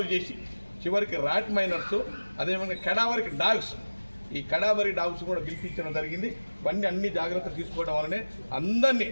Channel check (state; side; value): inverted; both; correlation -1.00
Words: చేసి చివరికి ర్యాట్ మైనర్స్, అదేవిధంగా కడావరికి డాగ్స్, ఈ కడావరి డాగ్స్ కూడా పిలిపించడం జరిగింది. ఇవన్నీ అన్ని జాగ్రత్తలు తీసుకోవడం వల్లనే అందరినీ,